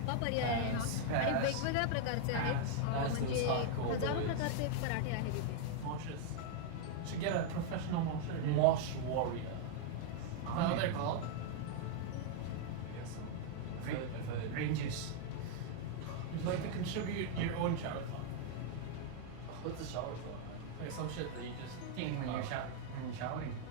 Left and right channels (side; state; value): both; different; correlation 0.00